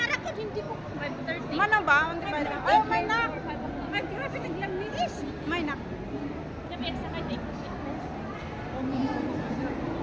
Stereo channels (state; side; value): identical; both; correlation 1.00